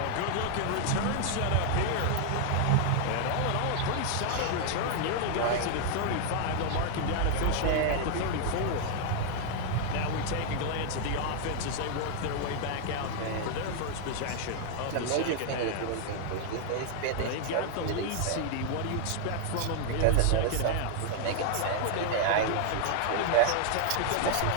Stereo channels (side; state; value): both; different; correlation 0.00